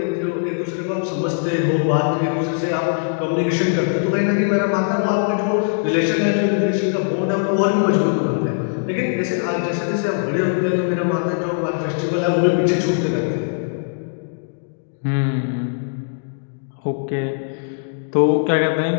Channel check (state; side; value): silent; right; digital silence